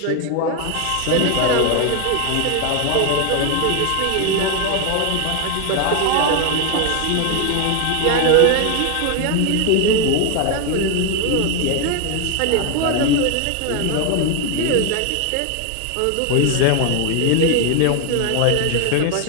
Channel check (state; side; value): different; both; correlation 0.01